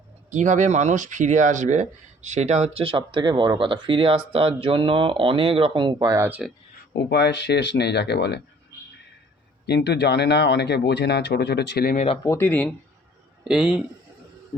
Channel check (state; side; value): normal; both; correlation 0.55